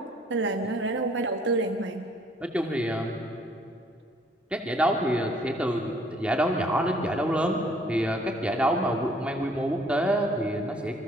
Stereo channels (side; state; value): both; normal; correlation 0.61